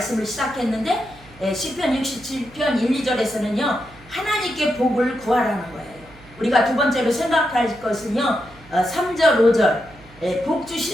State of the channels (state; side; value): noise; right; hum, 23 dB below the sound